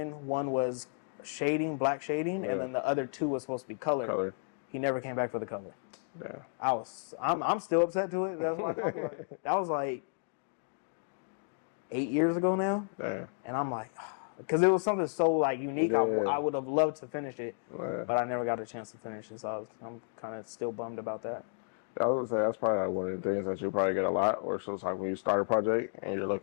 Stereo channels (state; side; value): silent; right; digital silence